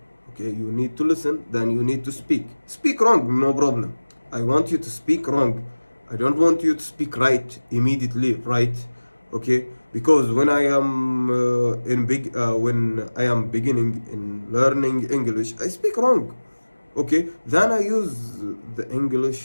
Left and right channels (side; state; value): both; inverted; correlation -1.00